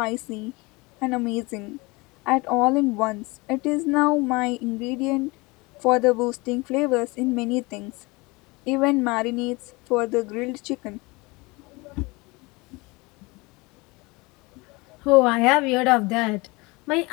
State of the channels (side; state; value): right; quieter; 24.9 dB